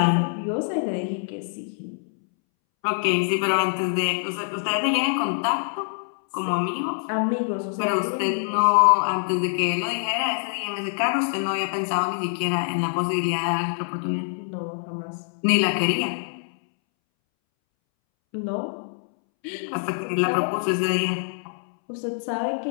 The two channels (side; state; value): right; silent; 62 dB below the other